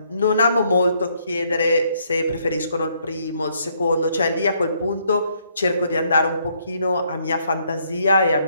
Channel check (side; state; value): both; inverted; correlation -0.70